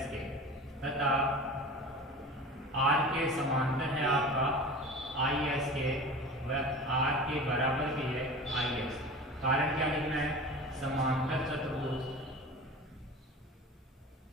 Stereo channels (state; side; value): normal; both; correlation 0.35